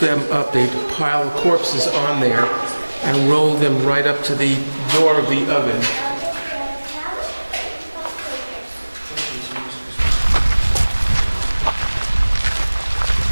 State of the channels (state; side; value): inverted; both; correlation -1.00